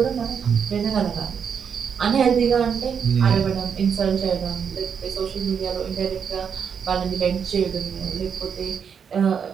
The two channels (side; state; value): left; quieter; 7.1 dB